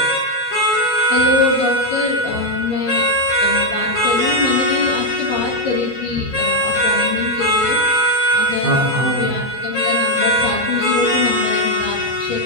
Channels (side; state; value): both; normal; correlation 0.01